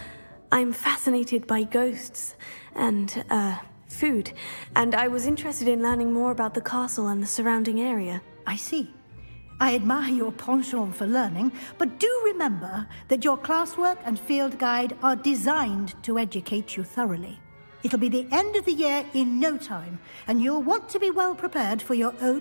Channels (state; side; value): inverted; both; correlation -1.00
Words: I'm fascinated by ghosts and, food, and I was interested in learning more about the castle and the surrounding area. I see. I admire your penchant for learning, but do remember that your classwork and field guide are designed to educate you thoroughly. It'll be the end of the year in no time, and you'll want to be well prepared for your